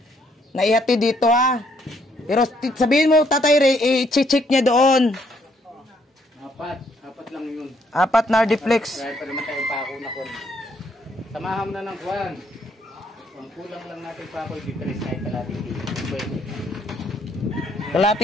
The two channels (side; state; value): both; normal; correlation 0.70